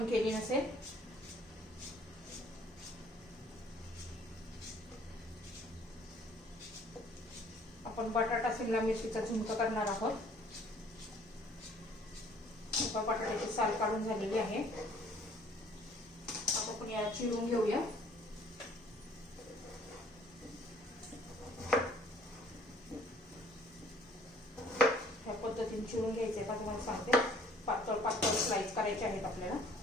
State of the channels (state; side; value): normal; both; correlation 0.57